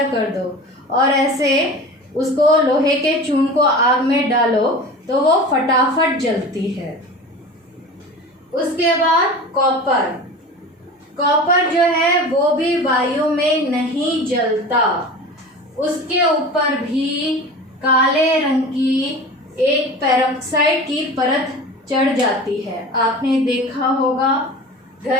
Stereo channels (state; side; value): normal; both; correlation 0.35